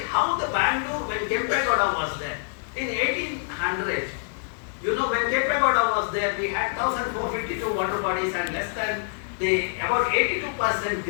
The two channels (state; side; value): silent; right; digital silence